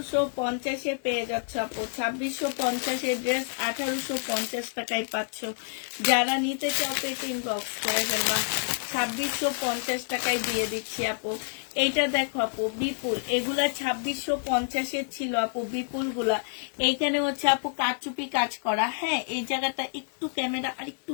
পেয়ে যাচ্ছ আপু। 2650-এর ড্রেস 1850 টাকায় পাচ্ছ। যারা নিতে চাও এটা ইনবক্স করে ফেলবা। 2650 টাকায় দিয়ে দিচ্ছি আপু। এইটা দেখো আপু বিপুল, এগুলা 2650-এর ছিল আপু বিপুল গুলা। এইখানে হচ্ছে আপু কারচুপি কাজ করা। হ্যাঁ, এই জায়গাটা একটু ক্যামেরা আর একটু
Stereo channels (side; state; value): right; silent; digital silence